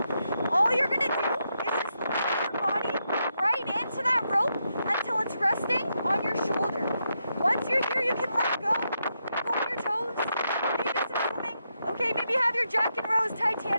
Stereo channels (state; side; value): inverted; both; correlation -0.83